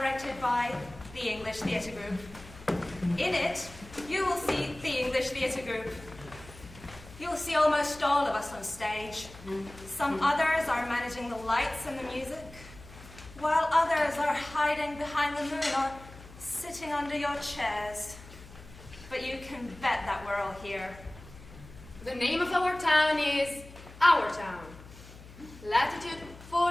by the English Theatre Group. In it, you will see the English Theatre Group. You'll see almost all of us on stage. Some others are managing the lights and the music, while others are hiding behind the moon or sitting under your chairs. But you can bet that we're all here. The name of our town is Our Town. Latitude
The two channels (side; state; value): left; noise; hum, 18 dB below the sound